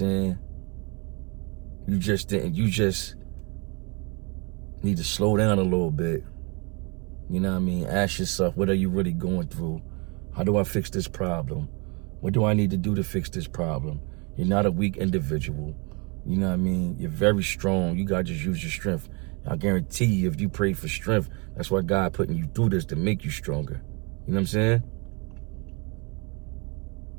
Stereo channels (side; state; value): left; quieter; 31.9 dB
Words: You just need to slow down a little bit. You know what I mean? Ask yourself, what are you really going through? How do I fix this problem? What do I need to do to fix this problem? You're not a weak individual. You know what I mean? You're very strong. You got to just use your strength. I guarantee you, if you pray for strength, that's why God putting you through this, to make you stronger. You know what I'm saying?